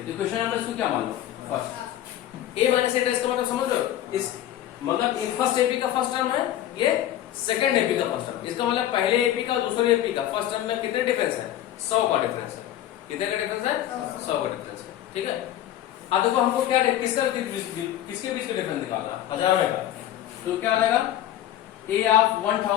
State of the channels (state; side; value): quieter; right; 12.4 dB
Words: तो क्वेश्चन नंबर इसको क्या मान लो? First A minus A dash का मतलब समझ लो, इस मतलब फर्स्ट एपी का फर्स्ट टर्म है, ये सेकंड एपी का फर्स्ट टर्म। इसका मतलब पहले एपी का दूसरे एपी का फर्स्ट टर्म में कितने डिफरेंस है? 100 का डिफरेंस है। कितने का डिफरेंस है? 100 का डिफरेंस है, ठीक है। अब देखो हमको क्या किसके बीच का डिफरेंस निकालना? हजारों का। तो क्या आएगा? A of